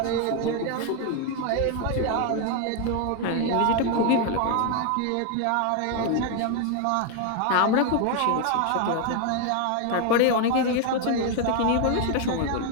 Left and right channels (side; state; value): both; different; correlation 0.01